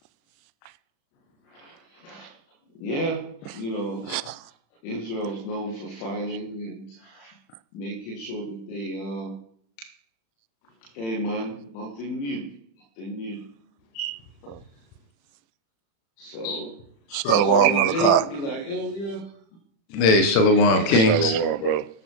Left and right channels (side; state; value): right; late; 36 ms